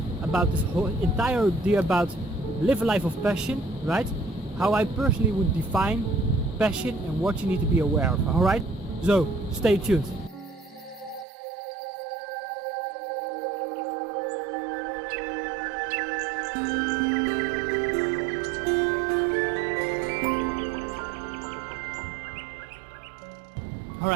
about this whole entire idea about live a life of passion, right? How I personally would define passion and what you need to be aware of, alright? So, stay tuned.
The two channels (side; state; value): left; drops out; at 11.2 s